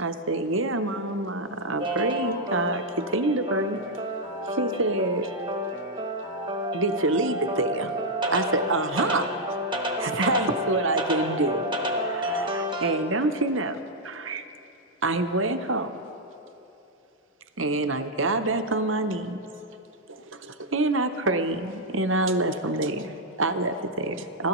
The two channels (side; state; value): both; normal; correlation -0.03